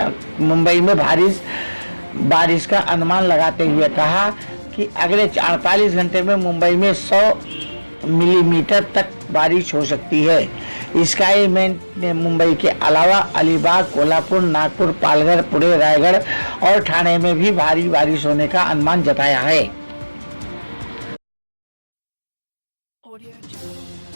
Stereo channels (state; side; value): inverted; both; correlation -1.00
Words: मुंबई में बारिश का अनुमान लगाते हुए कहा कि अगले 48 घंटे में मुंबई में 100 मिलीमीटर तक बारिश हो सकती है। स्काईमेट ने मुंबई के अलावा अलीबाग, कोल्हापुर, नागपुर, पालघर, पुणे, रायगढ़ और ठाणे में भी भारी बारिश होने का अनुमान जताया है।